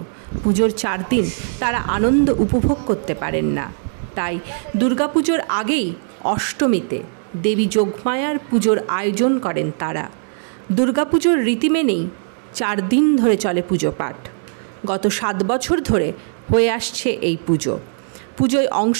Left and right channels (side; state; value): left; silent; digital silence